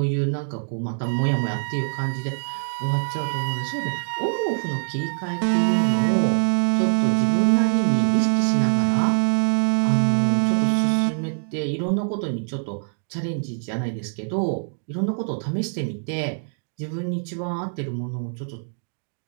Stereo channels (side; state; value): left; silent; digital silence